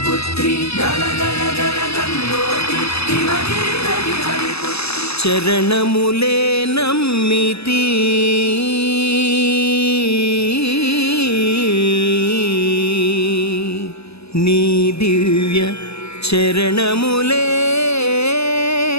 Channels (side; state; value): right; late; 0.78 ms